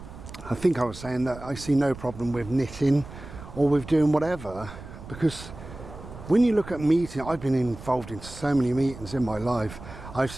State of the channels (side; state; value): right; noise; rumble, 14 dB below the sound